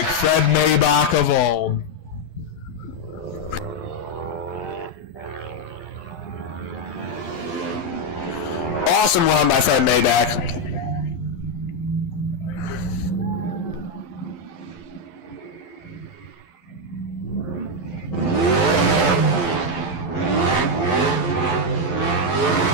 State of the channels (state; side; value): late; right; 12 ms